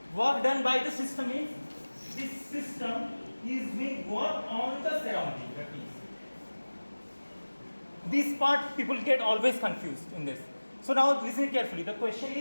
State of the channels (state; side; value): inverted; both; correlation -1.00